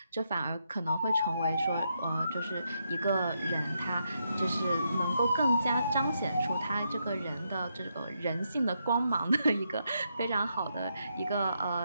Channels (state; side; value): inverted; both; correlation -0.80